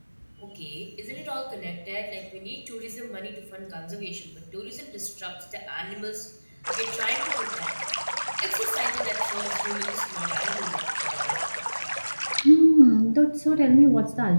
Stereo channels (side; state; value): both; inverted; correlation -1.00